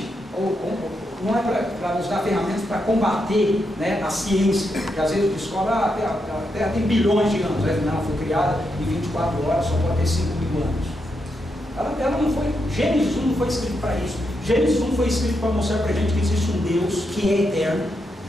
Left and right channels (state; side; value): normal; both; correlation 0.83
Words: não é para nos dar ferramentas para combater, né, a ciência, que às vezes descobre, a Terra tem bilhões de anos, né? Não, foi criada em 24 horas, só pode ter 5.000 anos. Ela não foi, Gênesis 1 não foi escrito para isso. Gênesis 1 foi escrito para mostrar para a gente que existe um Deus que é eterno,